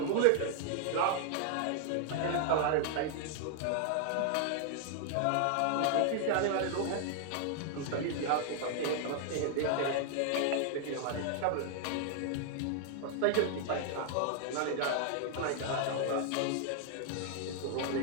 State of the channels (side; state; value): both; different; correlation 0.00